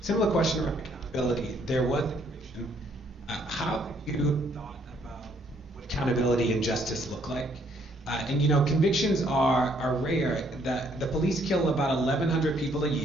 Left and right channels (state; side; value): normal; both; correlation 0.67